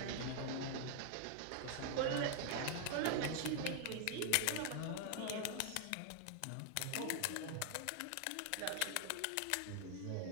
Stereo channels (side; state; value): both; different; correlation 0.00